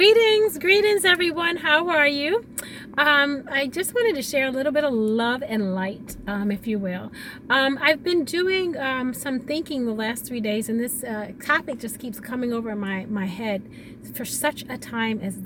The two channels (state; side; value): identical; both; correlation 1.00